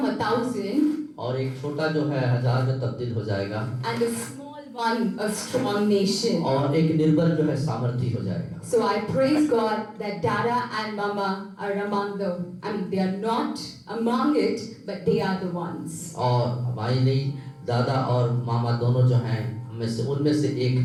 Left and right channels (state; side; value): identical; both; correlation 1.00